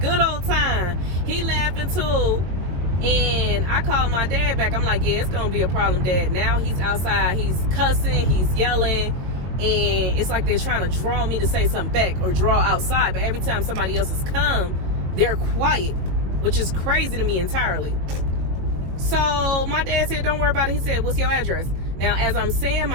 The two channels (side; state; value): left; late; 22 ms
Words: old time. He laughing too. And I called my dad back. I'm like, yeah, it's gonna be a problem, Dad. Now he's outside, he's cussing, he's yelling, and it's like they're trying to draw me to say something back or draw outside. But every time somebody else has come, they're quiet, which is crazy to me entirely. So my dad said, don't worry about it. He said, what's your address? Now, as I'm saying